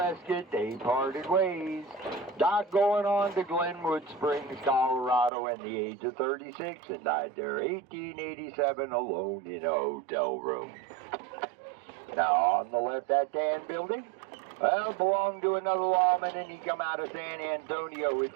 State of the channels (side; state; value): left; drops out; at 5.3 s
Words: they parted ways. Doc going on to Glenwood Springs, Colorado, at the age of 36 and died there 1887 alone in a hotel room. Now, on the left, that tan building, well, belonged to another lawman, and he come out of San Antonio.